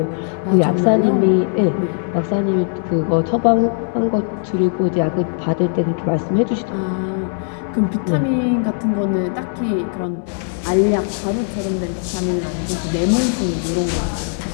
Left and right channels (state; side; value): silent; right; 66 dB below the other